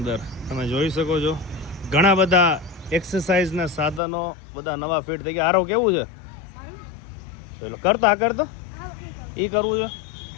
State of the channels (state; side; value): drops out; right; at 4.0 s